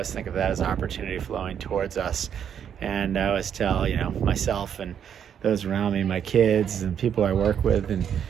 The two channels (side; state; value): left; quieter; 8.6 dB